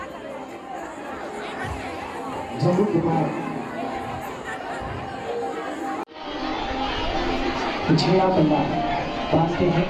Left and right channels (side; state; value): both; identical; correlation 1.00